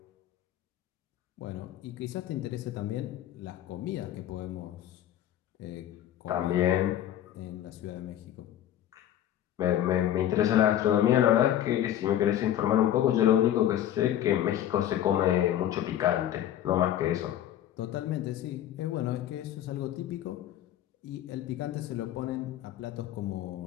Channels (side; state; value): right; quieter; 11.7 dB